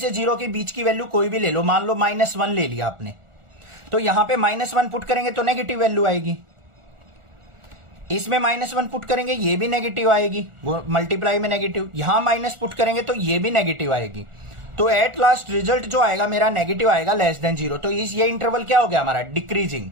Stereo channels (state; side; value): late; left; 1.4 ms